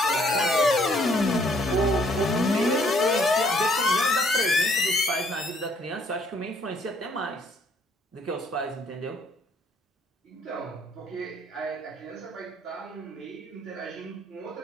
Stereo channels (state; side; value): normal; both; correlation 0.65